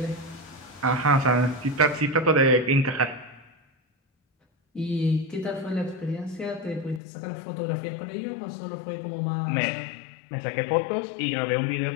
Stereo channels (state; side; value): drops out; right; at 7.0 s